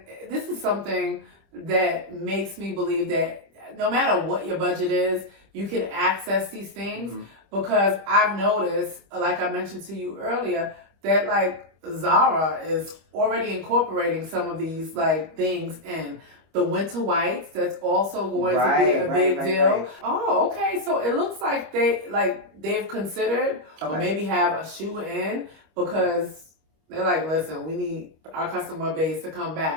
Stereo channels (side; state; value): left; late; 25 ms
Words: this is something that makes me believe that no matter what your budget is, you can access these things because I've noticed, like I mentioned to you earlier, that like Zara is already incorporating some of these like things in. The winter whites, that's also going to be a big deal. Oh, okay. So it looks like they've considered or maybe have a shoe in because they're like, listen, we need our customer base to come